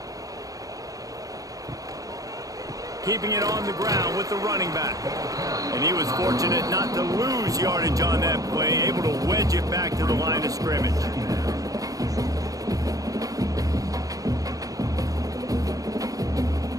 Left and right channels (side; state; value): left; late; 0.17 ms